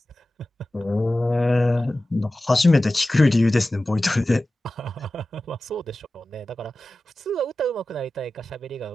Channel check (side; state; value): both; normal; correlation 0.95